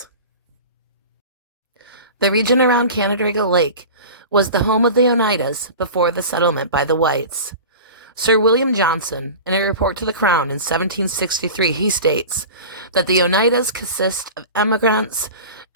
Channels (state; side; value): inverted; both; correlation -0.34